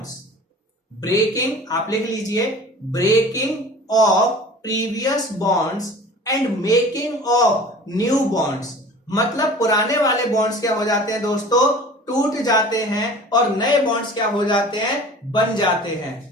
Breaking आप लिख लीजिए, breaking of previous bonds and making of new bonds. मतलब पुराने वाले बॉन्ड्स क्या हो जाते हैं दोस्तों, टूट जाते हैं और नए बॉन्ड्स क्या हो जाते हैं, बन जाते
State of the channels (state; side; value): normal; both; correlation 0.42